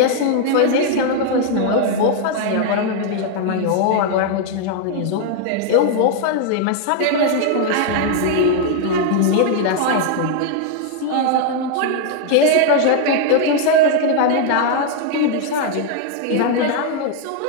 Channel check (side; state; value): both; different; correlation 0.00